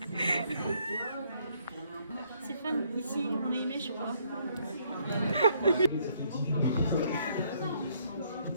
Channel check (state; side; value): inverted; both; correlation -0.67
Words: C'est fun, ici on est aimé, je crois.